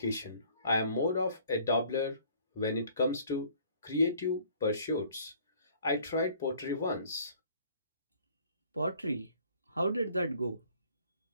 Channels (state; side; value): inverted; both; correlation -0.56